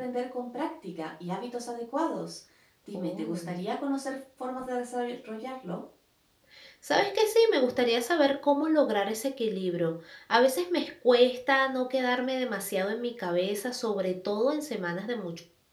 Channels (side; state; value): both; identical; correlation 1.00